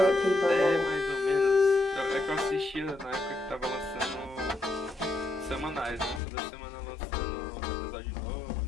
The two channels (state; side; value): drops out; right; at 6.2 s